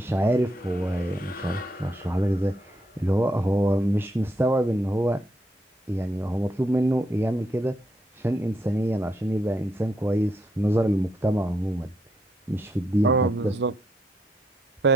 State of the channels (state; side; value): normal; both; correlation 0.77